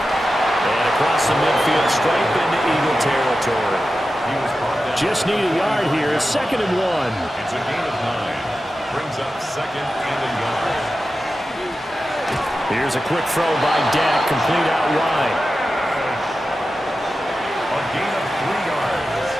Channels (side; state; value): both; normal; correlation 0.92